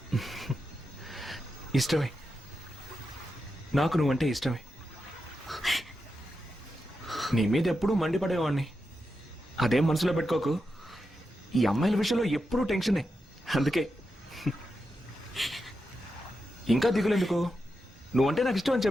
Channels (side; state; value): both; normal; correlation 0.88